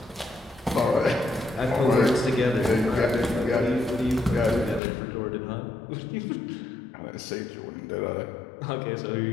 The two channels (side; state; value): right; drops out; at 4.8 s